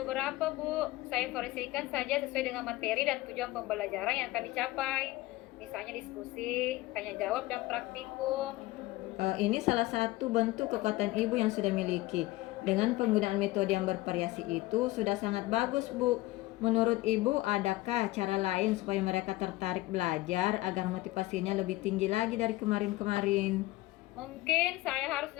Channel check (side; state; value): right; quieter; 18.5 dB